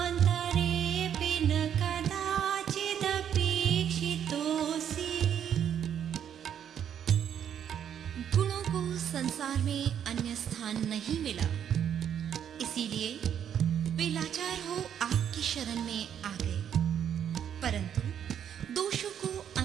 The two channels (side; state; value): left; quieter; 9.1 dB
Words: स्थान नहीं मिला, इसीलिए वे लाचार हो आपकी शरण में आ गए। परंतु दोषों को